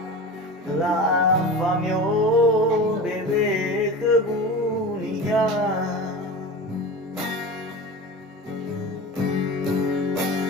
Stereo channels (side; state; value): both; normal; correlation 0.31